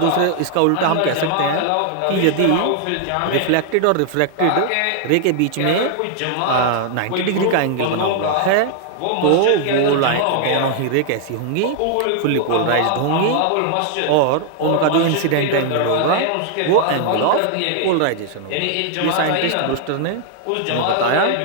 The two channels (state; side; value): different; both; correlation 0.00